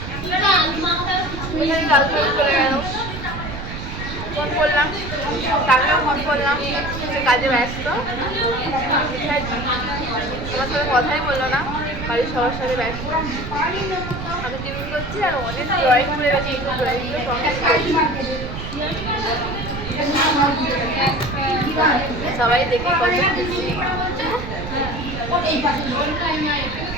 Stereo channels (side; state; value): right; noise; rumble, 8 dB below the sound